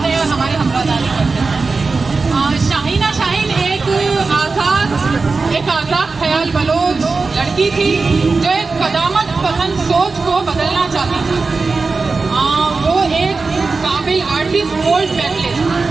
हैं और हमारी हमरादारी करते हैं। शाहीना शाहीन एक आज़ाद ख्याल बलोच लड़की थी जो एक कदामत पसंद सोच को बदलना चाहती थी। वो एक काबिल आर्टिस्ट, गोल्ड मेडलिस्ट,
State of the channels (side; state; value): left; quieter; 4.1 dB